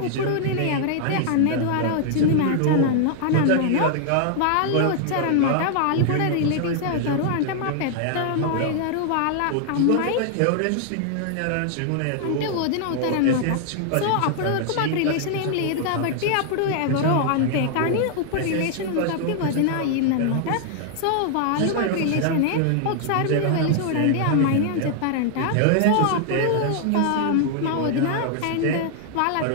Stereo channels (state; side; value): different; both; correlation 0.00